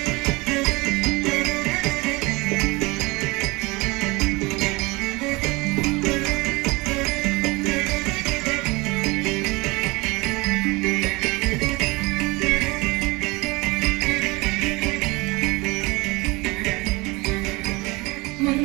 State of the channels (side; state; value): left; quieter; 24.5 dB